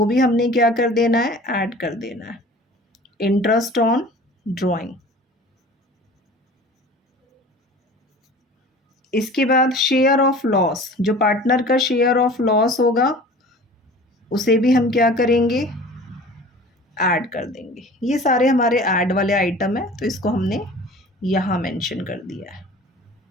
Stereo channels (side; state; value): both; normal; correlation 0.43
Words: भी हमने क्या कर देना है, ऐड कर देना है, इंटरेस्ट ऑन ड्राइंग। इसके बाद शेयर ऑफ लॉस, जो पार्टनर का शेयर ऑफ लॉस होगा उसे भी हम क्या करेंगे, ऐड कर देंगे। ये सारे हमारे ऐड वाले आइटम है, तो इसको हमने यहाँ मेंशन कर दिया है।